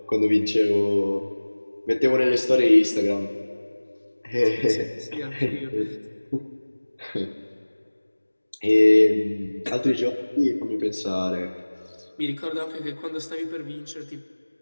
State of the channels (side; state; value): both; inverted; correlation -1.00